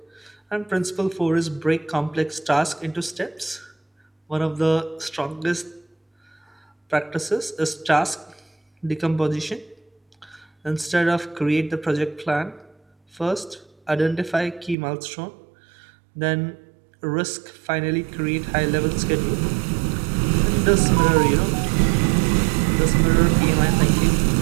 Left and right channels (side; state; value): left; drops out; at 14.8 s